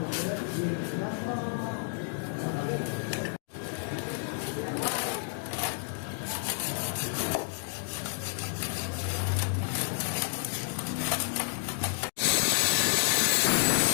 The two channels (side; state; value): right; silent; digital silence